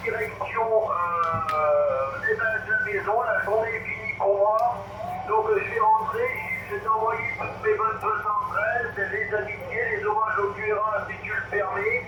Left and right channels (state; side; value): identical; both; correlation 1.00